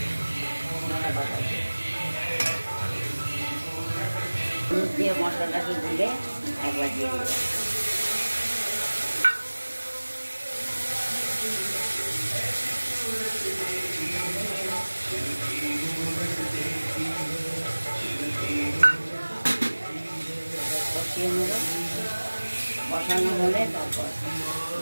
ধনে পাতা দিয়ে মশলাটাকে গুলে একবার দিয়ে দেবো। কষিয়ে নেব, কষানো হলে তারপর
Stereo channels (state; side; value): inverted; both; correlation -1.00